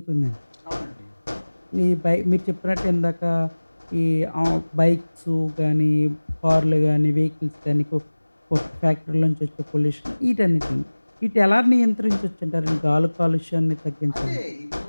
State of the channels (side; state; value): both; inverted; correlation -1.00